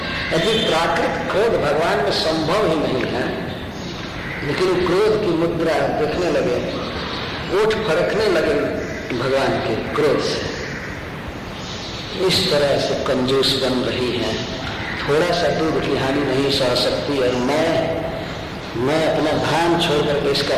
यदि प्राकृतिक क्रोध भगवान में संभव ही नहीं है, लेकिन क्रोध की मुद्रा देखने लगे, ओठ फड़कने लगे भगवान के क्रोध से। इस तरह से कंजूस बन रही है, थोड़ा सा दूध की हानि नहीं सह सकती, और मैं अपना भान छोड़ करके इसका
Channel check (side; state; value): both; identical; correlation 1.00